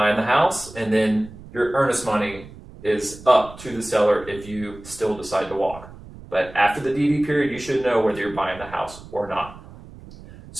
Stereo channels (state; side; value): noise; right; rumble, 18 dB below the sound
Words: the house, and then your earnest money is up to the seller if you still decide to walk. But after the DD period, you should know whether you're buying the house or not.